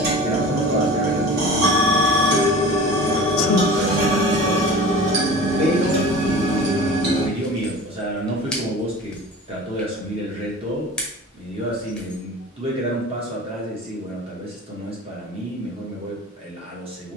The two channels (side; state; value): both; normal; correlation 0.38